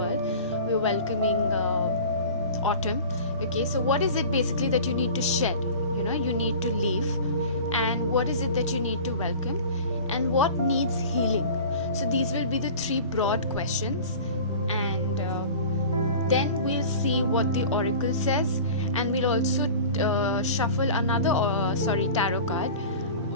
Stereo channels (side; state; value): both; inverted; correlation -0.39